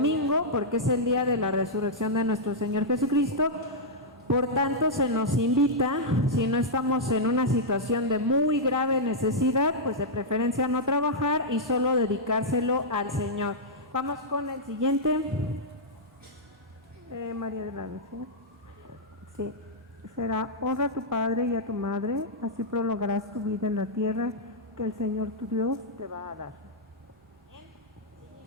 porque es el día de la resurrección de nuestro Señor Jesucristo. Por tanto, se nos invita, si no estamos en una situación de muy grave necesidad, pues de preferencia no trabajar y solo dedicárselo al Señor. Vamos con el siguiente. María de la Luz, ¿sí? Será: honra a tu padre y a tu madre, así prolongarás tu vida en la tierra que el Señor tu Dios te va a dar.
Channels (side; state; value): both; normal; correlation -0.08